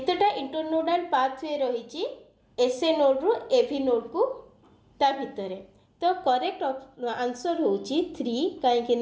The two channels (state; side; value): identical; both; correlation 1.00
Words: इंटरनोडल पाथवे रही एसए नोड रु एवी नोड को ता भितर। तो करेक्ट आंसर होची 3